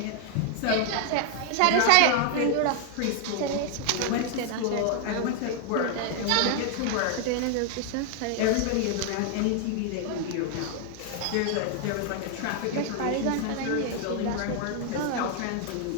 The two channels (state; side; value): different; both; correlation 0.00